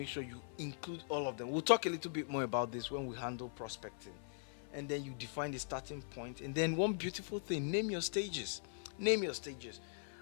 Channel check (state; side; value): silent; right; 51 dB below the other